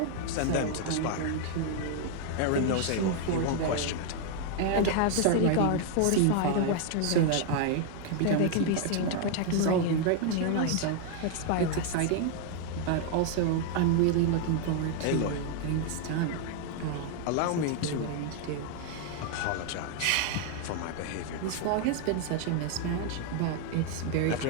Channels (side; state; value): both; different; correlation 0.00